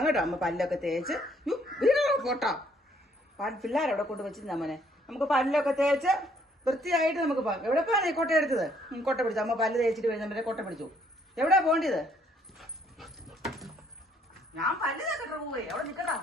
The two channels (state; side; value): normal; both; correlation 0.66